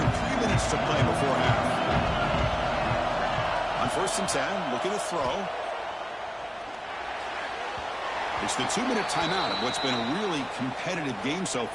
minutes to play before half. On 1st and 10, looking to throw. It's the 2-minute timeout of what's been a really competitive game so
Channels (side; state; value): both; identical; correlation 1.00